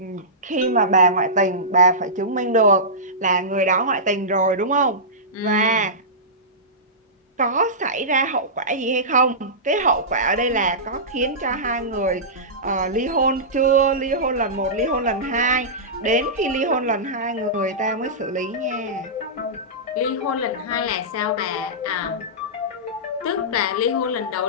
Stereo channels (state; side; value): normal; both; correlation -0.17